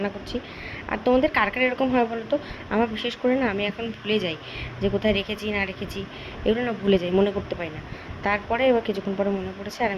করছি। আর তোমাদের কার কার এরকম হয় বলো তো? আমার বিশেষ করে না, আমি এখন ভুলে যাই যে কোথায় রেখেছি না রেখেছি, এগুলো না ভুলে যাই, মনে করতে পারি না। তারপরে এবার কিছুক্ষণ পরে মনে পড়েছে, আর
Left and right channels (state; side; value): identical; both; correlation 1.00